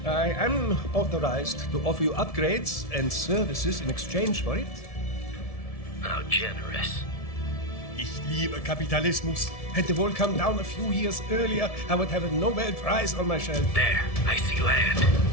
I am authorized to offer you upgrades and services in exchange for it. How generous. Ich liebe Kapitalismus. Had the wall come down a few years earlier, I would have a Nobel Prize on my shelf. There, I see land.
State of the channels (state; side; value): late; right; 1.7 ms